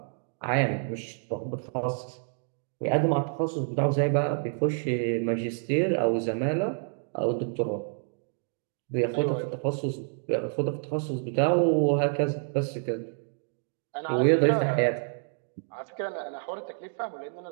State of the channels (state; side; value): silent; left; digital silence